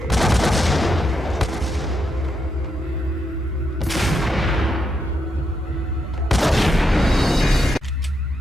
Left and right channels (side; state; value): both; normal; correlation 0.82